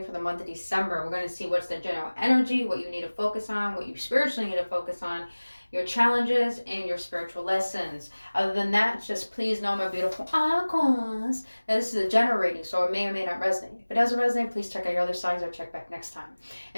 for the month of December. We're going to see what's the general energy, what you need to focus on, what you spiritually need to focus on, your challenges, and your spiritual lessons. Other than that, just please know, my beautiful Aquas, that this is a general reading, so it may or may not resonate. If it doesn't resonate, please check out your other signs or check back next time.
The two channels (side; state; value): both; inverted; correlation -1.00